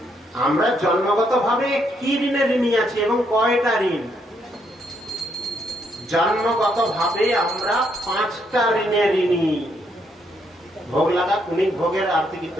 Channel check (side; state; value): both; normal; correlation 0.74